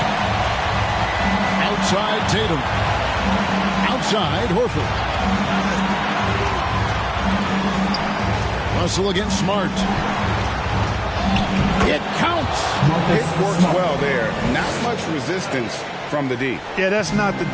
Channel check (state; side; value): identical; both; correlation 1.00